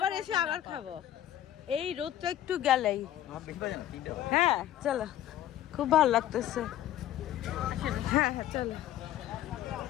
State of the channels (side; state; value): right; quieter; 12.3 dB